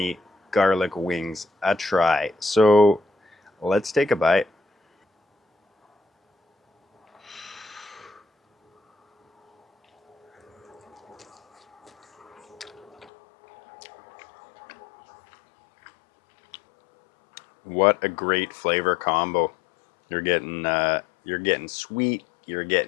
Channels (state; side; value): drops out; right; at 13.1 s